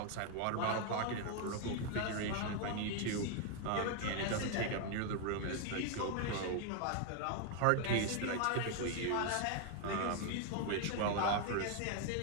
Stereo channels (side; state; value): both; different; correlation 0.00